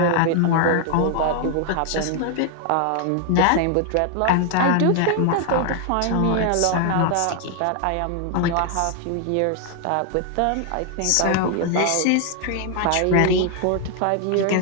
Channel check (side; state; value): both; different; correlation 0.00